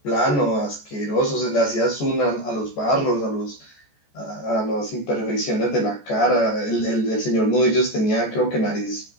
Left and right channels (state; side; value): late; right; 14 ms